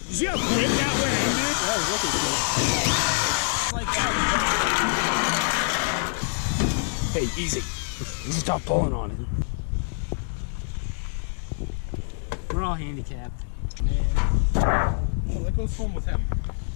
you see how quick that went, dude? That was looking cool. Like that. Hey, easy. Stop pulling on it. We're all handicapped. Man. Oh, that goes home with him.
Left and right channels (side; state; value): right; silent; 61 dB below the other